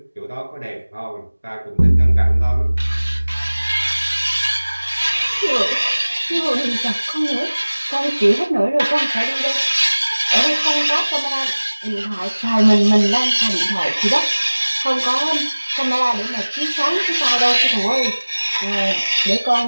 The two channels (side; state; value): both; inverted; correlation -1.00